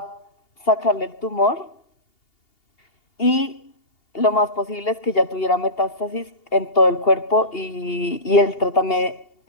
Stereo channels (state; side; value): late; right; 2.8 ms